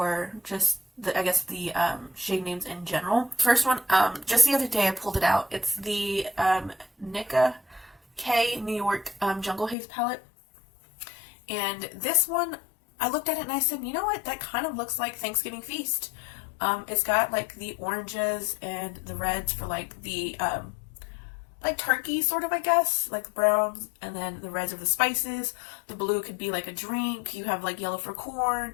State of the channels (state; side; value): drops out; right; at 9.8 s